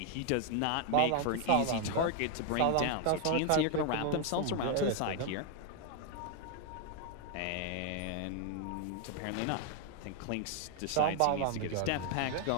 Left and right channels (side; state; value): both; different; correlation 0.00